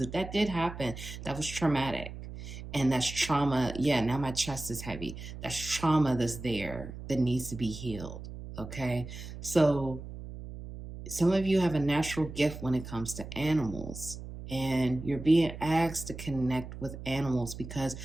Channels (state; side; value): noise; right; hum, 11 dB below the sound